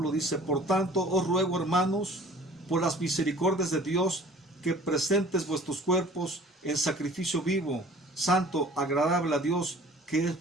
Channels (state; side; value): normal; both; correlation 0.48